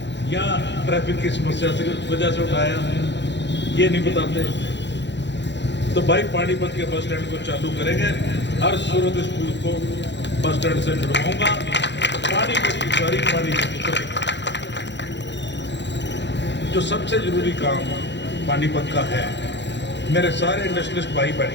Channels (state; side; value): late; right; 0.52 ms